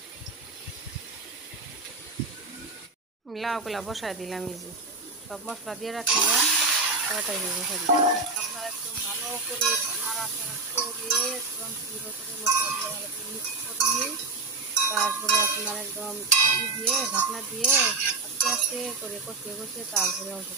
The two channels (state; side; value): quieter; left; 3.7 dB